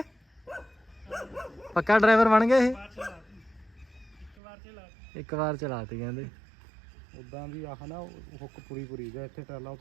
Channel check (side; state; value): left; drops out; at 4.4 s